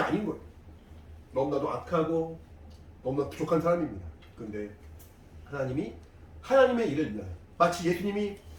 거예요. 너무나도 악하고 너무나 부족한 사람입니다. 그런데 하나님이 하나님의 일을 위하여 마치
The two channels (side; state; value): both; identical; correlation 1.00